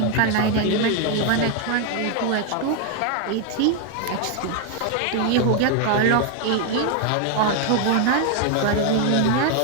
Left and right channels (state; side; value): different; both; correlation 0.01